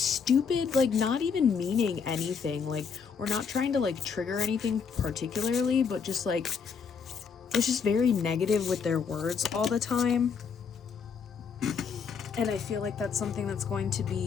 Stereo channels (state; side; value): quieter; right; 6.1 dB